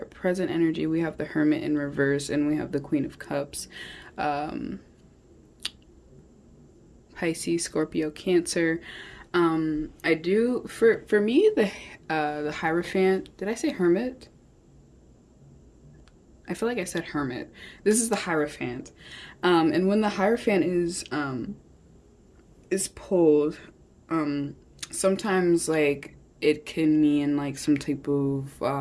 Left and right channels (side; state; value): both; identical; correlation 1.00